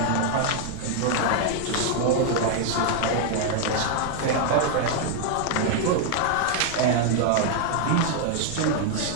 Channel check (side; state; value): both; different; correlation 0.00